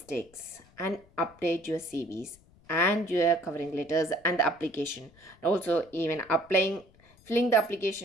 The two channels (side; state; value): left; noise; rumble, 28 dB below the sound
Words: and update your CVs and your covering letters and the application. Also, even filling the